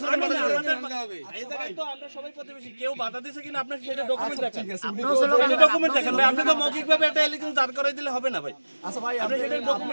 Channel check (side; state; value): both; inverted; correlation -1.00